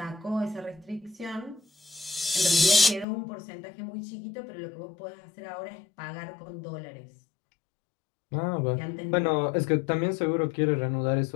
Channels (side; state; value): right; drops out; at 3.1 s